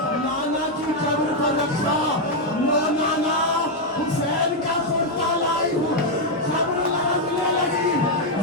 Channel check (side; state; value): both; normal; correlation 0.01